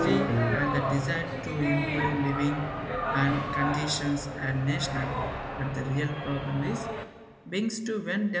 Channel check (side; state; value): both; identical; correlation 1.00